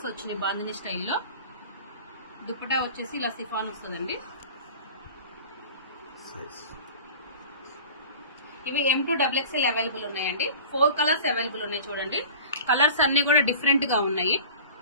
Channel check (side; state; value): both; inverted; correlation -0.39